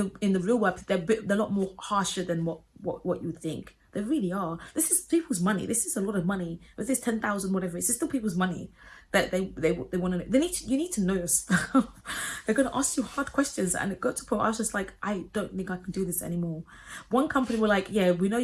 real world, they're a lot more harsher than what you think. They really are. This is people's money. This is a lot of money. If this 10,000, whatever, it's still people's money that they want to know. You need to know your stuff. They're going to ask you hard questions, and it got to a point where I was just like, I don't think I can do this anymore. One company were like, yeah, we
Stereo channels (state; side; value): identical; both; correlation 1.00